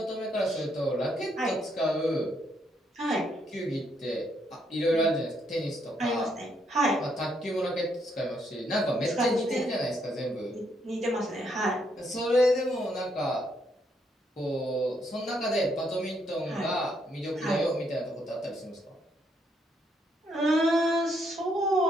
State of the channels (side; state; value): both; normal; correlation 0.74